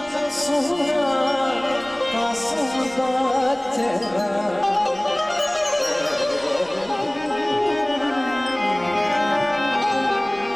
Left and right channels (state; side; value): noise; left; rumble, 28 dB below the sound